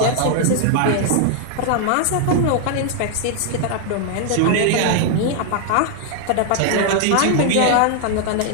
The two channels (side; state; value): both; different; correlation 0.00